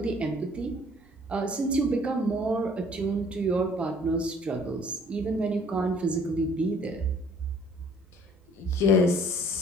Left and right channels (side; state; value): right; noise; hum, 30 dB below the sound